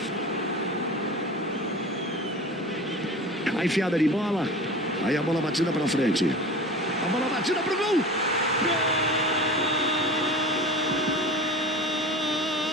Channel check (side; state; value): both; normal; correlation 0.35